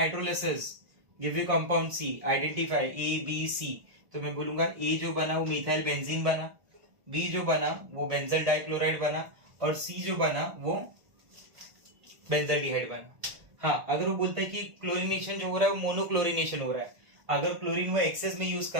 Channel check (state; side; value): late; left; 1.3 ms